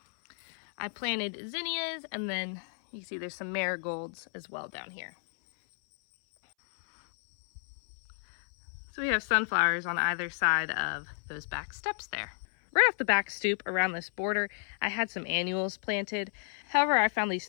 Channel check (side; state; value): right; silent; 57 dB below the other